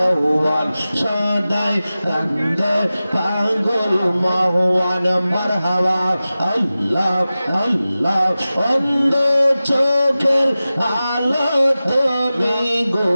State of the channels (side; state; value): both; inverted; correlation -0.96